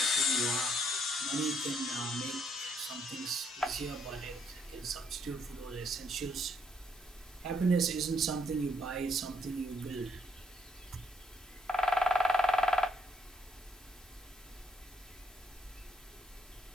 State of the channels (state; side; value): normal; both; correlation 0.69